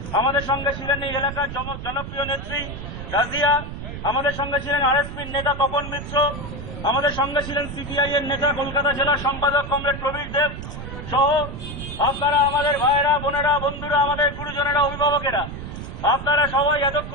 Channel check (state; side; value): noise; right; rumble, 9 dB below the sound